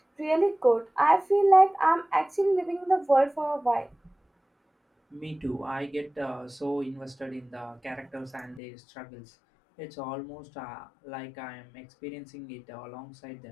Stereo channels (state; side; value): drops out; right; at 8.6 s